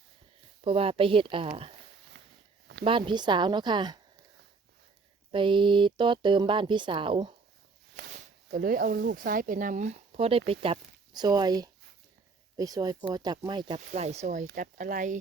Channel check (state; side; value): quieter; left; 4.4 dB